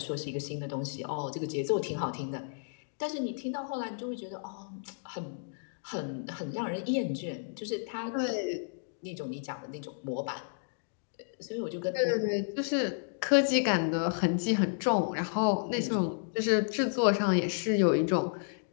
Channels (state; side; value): silent; right; digital silence